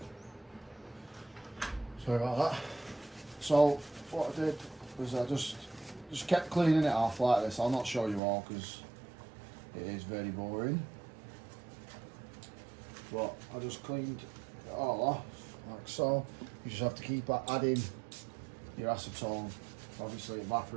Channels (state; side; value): drops out; left; at 8.2 s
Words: Sorry about that. So, what I did was I just kept cleaning it off like this. I'll not show you all because it is very boring. But I just cleaned it all off like so. You just have to keep adding your acetone. Obviously it